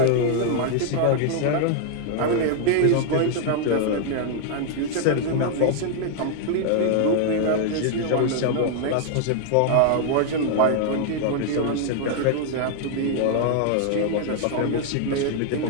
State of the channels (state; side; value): different; both; correlation 0.00